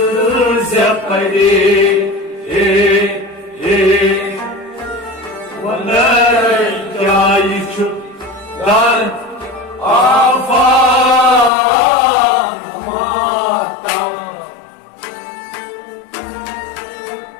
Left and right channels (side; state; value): right; drops out; at 11.5 s